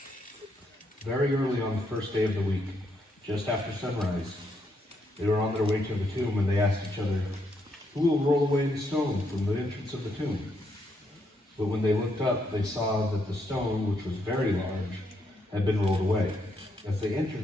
Very early on the first day of the week, just after sunrise, they were on their way to the tomb, and they asked each other, "Who will roll away the stone from the entrance of the tomb?" But when they looked up, they saw that the stone, which was very large, had been rolled away. As they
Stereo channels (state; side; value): normal; both; correlation 0.76